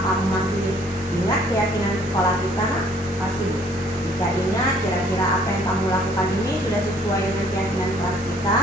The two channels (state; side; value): normal; both; correlation 0.59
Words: kamu masih ingat keyakinan sekolah kita nak? Masih. Jika ingat, kira-kira apa yang kamu lakukan ini sudah sesuai dengan keyakinan kelas kita?